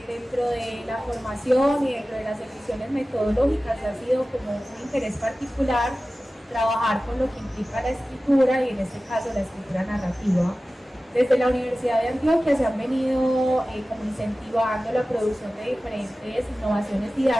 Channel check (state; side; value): normal; both; correlation 0.96